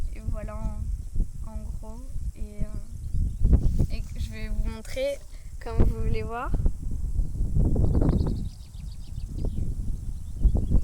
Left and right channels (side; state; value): both; identical; correlation 1.00